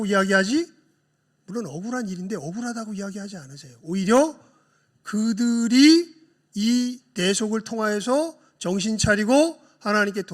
이야기하지, 물론 억울한 일인데 억울하다고 이야기하지 않으세요. 오히려 그들이 이 대속을 통하여서 정신 차리고 하나님께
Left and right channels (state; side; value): identical; both; correlation 1.00